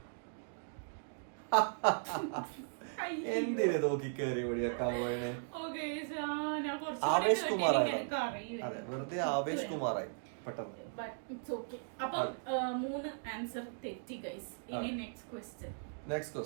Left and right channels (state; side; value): silent; left; digital silence